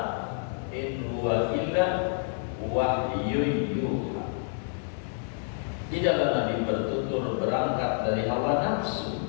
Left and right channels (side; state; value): right; silent; digital silence